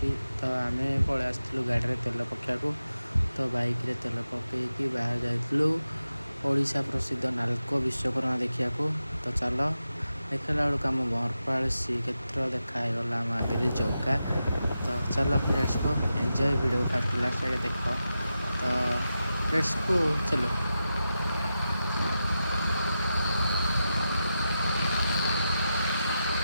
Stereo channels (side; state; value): both; inverted; correlation -0.90